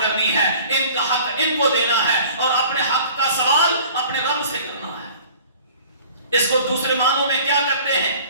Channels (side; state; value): both; inverted; correlation -0.48